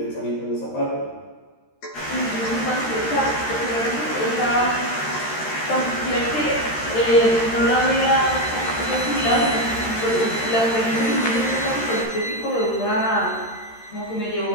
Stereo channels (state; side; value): late; right; 13 ms